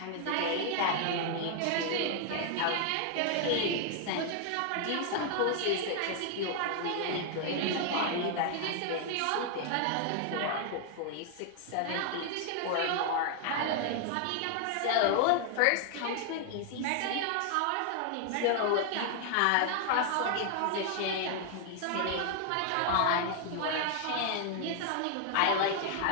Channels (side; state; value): both; different; correlation 0.00